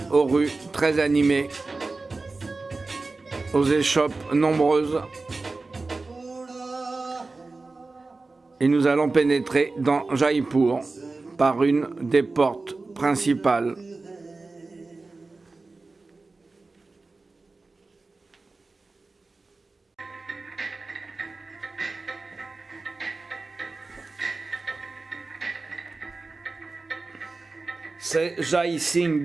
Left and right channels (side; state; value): left; quieter; 3.6 dB